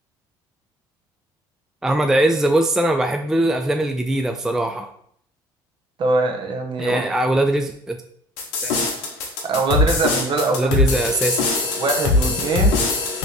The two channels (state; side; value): normal; both; correlation 0.54